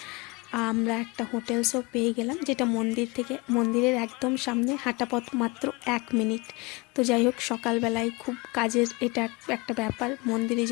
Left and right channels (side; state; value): right; quieter; 26.1 dB